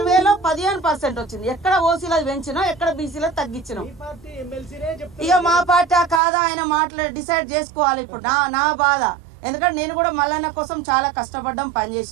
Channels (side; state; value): left; drops out; at 6.2 s